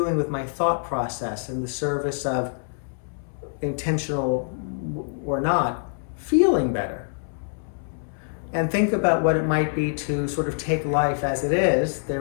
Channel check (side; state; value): right; silent; 62 dB below the other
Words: with my thought process in the service of, intentional or not, feeling better. And think about what it might be to sort of take life as it is.